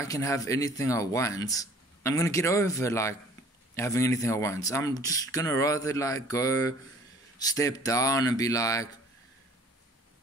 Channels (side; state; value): both; normal; correlation 0.52